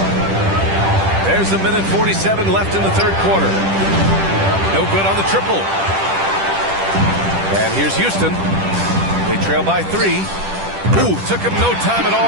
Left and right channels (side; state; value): left; late; 10 ms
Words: There's 1:47 left in the third quarter. No good on the triple. And here's Houston. They trail by 3. Ooh, took him no time at